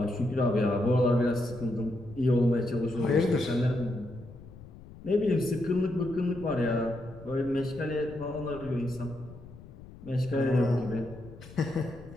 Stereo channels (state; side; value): noise; left; rumble, 18 dB below the sound